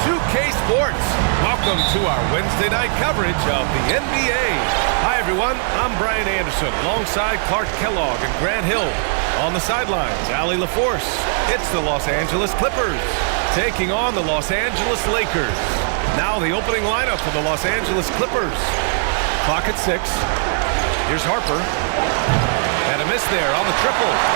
Sports. Welcome to our Wednesday night coverage of the NBA. Hi, everyone. I'm Bryant Anderson alongside Clark Kellogg and Grant Hill. On the sidelines, Allie LaForce. It's the Los Angeles Clippers taking on the Los Angeles Lakers. Now the opening lineup for the Los Angeles Clippers. Clock at 6. Here's Harper. And a miss there on the triple.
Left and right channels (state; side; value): silent; left; digital silence